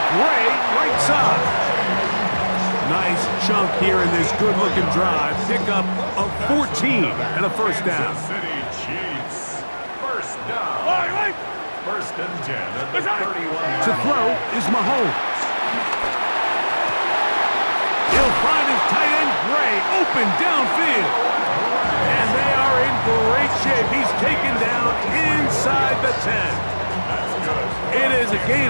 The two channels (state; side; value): inverted; both; correlation -1.00